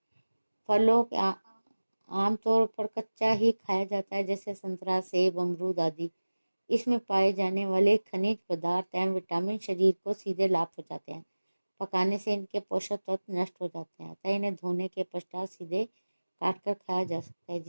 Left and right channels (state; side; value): inverted; both; correlation -1.00